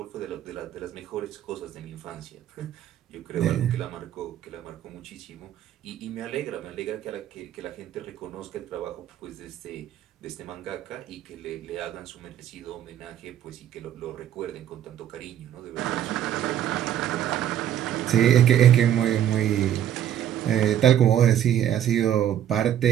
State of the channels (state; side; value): quieter; left; 10.7 dB